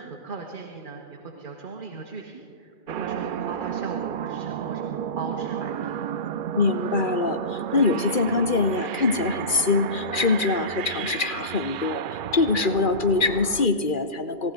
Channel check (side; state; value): right; late; 2.4 ms